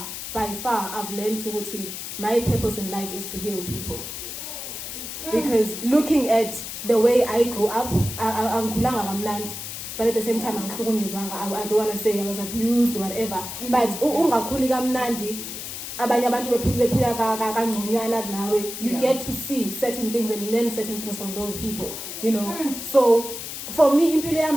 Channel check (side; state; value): left; noise; hiss, 8 dB below the sound